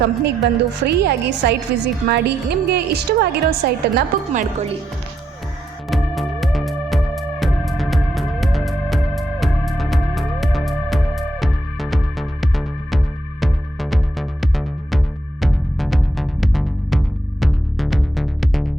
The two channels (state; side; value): normal; both; correlation 0.80